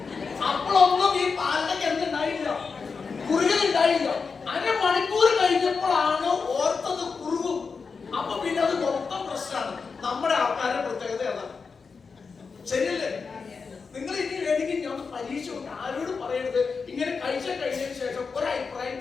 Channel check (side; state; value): right; quieter; 5.1 dB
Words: അപ്പോഴൊന്നും ഈ പാലിനൊക്കെ എന്തുണ്ടായില്ല, കുറുകലുണ്ടായില്ല. അരമണിക്കൂർ കഴിഞ്ഞപ്പോഴാണ് ഓർത്തത് കുറുകും. അപ്പൊ പിന്നെ അത് മൊത്തം പ്രശ്നമാണ്. നമ്മുടെ ആൾക്കാരുടെ പ്രത്യേകത അതാണ്. ശരിയല്ലേ?